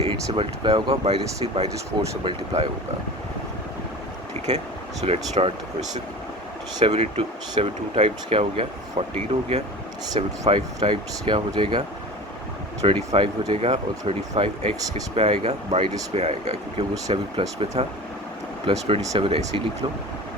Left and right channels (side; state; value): both; normal; correlation 0.35